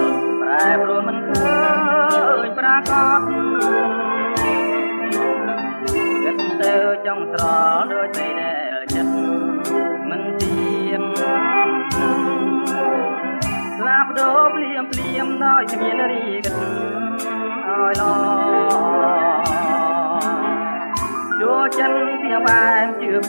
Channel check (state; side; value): inverted; both; correlation -1.00